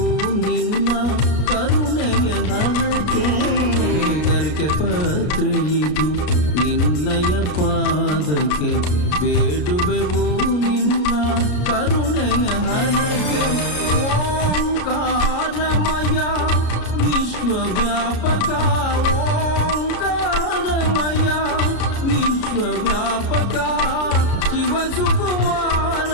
ನಿನ್ನ ಕರುಣೆಯ ಹರಕೆ ಗರಿಕೆ ಪತ್ರ ಇದು ನಿನ್ನಯ ಪಾದಕ್ಕೆ ಬೇಡುವೆವು ನಿನ್ನ ಕರುಣೆಯ ಹರಕೆ ಓಂಕಾರಮಯ ವಿಶ್ವವ್ಯಾಪಕ ಓಂಕಾರಮಯ ವಿಶ್ವವ್ಯಾಪಕ ಶಿವ ಸುಕುಮಾರ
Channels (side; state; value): right; late; 33 ms